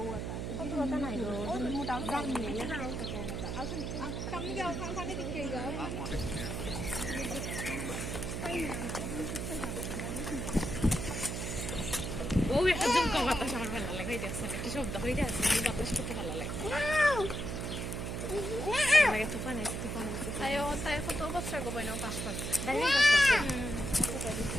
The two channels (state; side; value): noise; right; hum, 4 dB below the sound